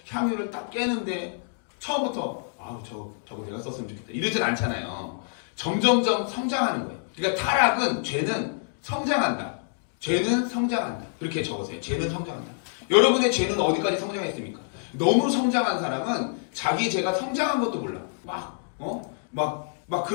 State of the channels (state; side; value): silent; right; digital silence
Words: 향유를 딱 깨는데 처음부터 저거 내가 썼으면 좋겠다 이러진 않잖아요. 점점점 성장하는 거예요. 그러니까 타락은 죄는 성장한다. 죄는 성장한다. 그렇게 적으세요. 죄는 성장한다. 여러분의 죄는 어디까지 성장했습니까? 너무 성장한 사람은 자기 죄가 성장한 것도 몰라. 막